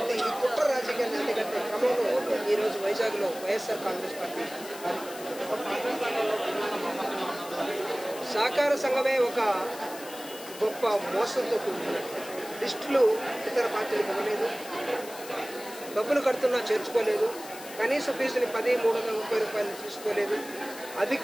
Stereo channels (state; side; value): noise; left; hiss, 15 dB below the sound